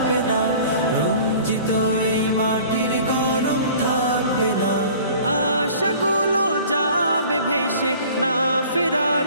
না, রঞ্জিত এই মাটির গরম থাকবে না। আশাগুলো যাবে ভেসে, না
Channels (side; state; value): both; inverted; correlation -0.47